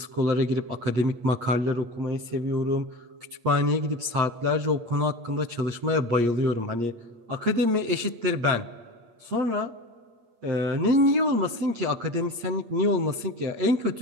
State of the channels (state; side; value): late; left; 8.5 ms